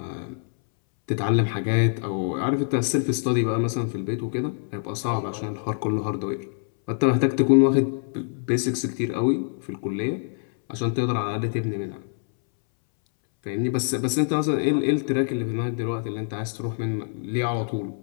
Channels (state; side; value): silent; right; 62 dB below the other